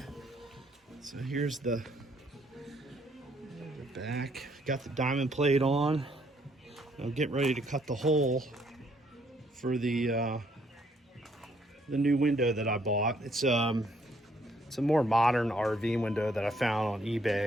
So here's the back. Got the diamond plate on. I'm getting ready to cut the hole for the new window that I bought. It's a more modern RV window that I found on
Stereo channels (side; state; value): both; normal; correlation 0.68